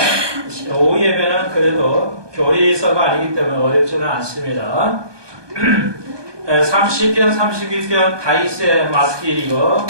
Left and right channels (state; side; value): late; left; 1.2 ms